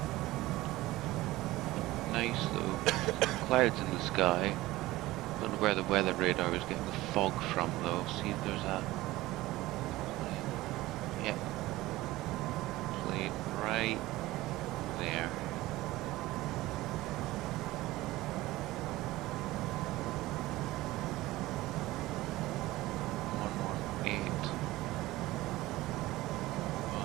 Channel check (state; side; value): quieter; left; 17.9 dB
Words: Nice though. Clouds in the sky. Don't know where the weather radar is getting the fog from though. See if there's a plane right there.